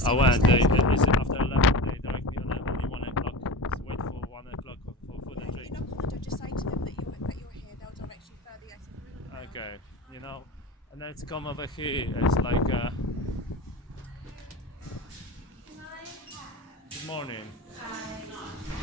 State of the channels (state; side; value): normal; both; correlation 0.30